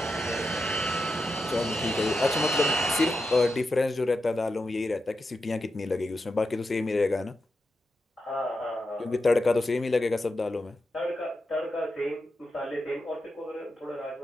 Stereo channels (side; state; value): both; normal; correlation 0.88